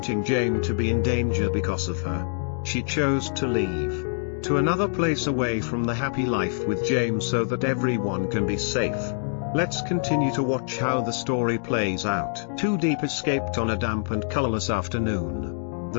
Jame to be in danger because of her. She chose to leave to another place away from the happy life with Jame so that everyone can be safe. Let's continue to watch how the story plays out. Diep escaped on a damp and colorless afternoon.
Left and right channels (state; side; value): silent; right; digital silence